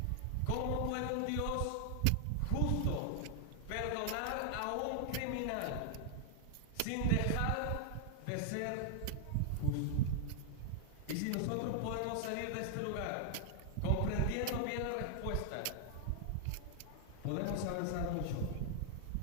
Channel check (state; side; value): different; both; correlation 0.00